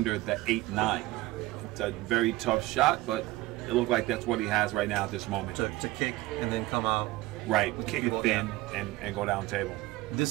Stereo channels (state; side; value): quieter; left; 18.8 dB